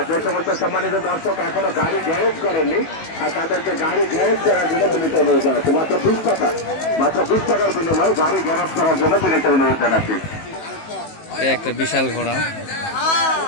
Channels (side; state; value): right; late; 19 ms